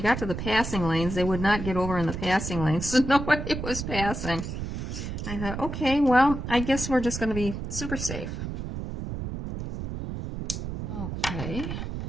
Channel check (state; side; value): noise; right; rumble, 6 dB below the sound